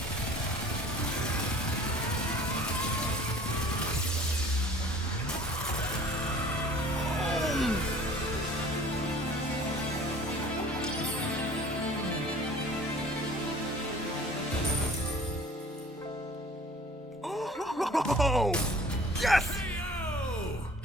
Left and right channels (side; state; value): both; normal; correlation 0.48